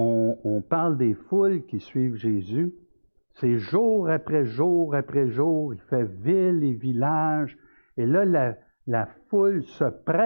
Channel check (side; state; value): both; inverted; correlation -1.00